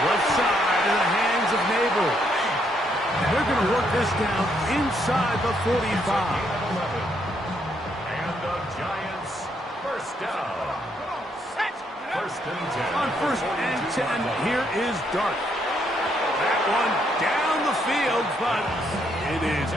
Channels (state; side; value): normal; both; correlation 0.74